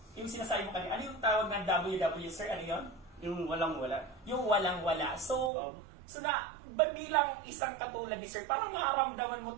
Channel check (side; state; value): left; drops out; at 5.5 s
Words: sinasabi mo kanina, ano yung tawag ng WW, Sir? Ano yun? Yung walang-wala. Yung walang-wala. So bilang isang katulad ni Sir, parang makaramdaman mo